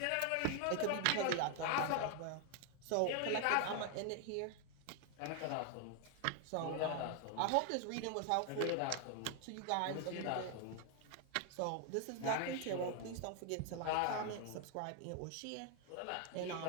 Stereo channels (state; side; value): different; both; correlation 0.00